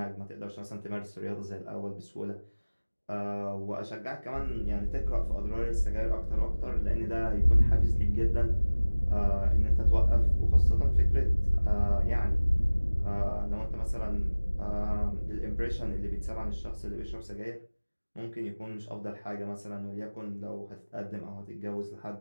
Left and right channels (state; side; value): inverted; both; correlation -1.00